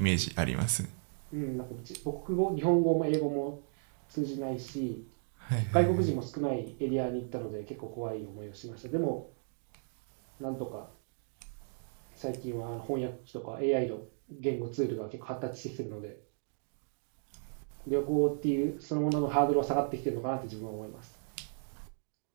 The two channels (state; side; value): silent; left; digital silence